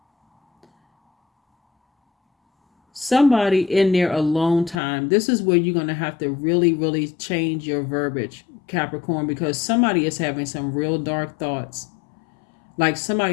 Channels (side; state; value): right; drops out; at 4.8 s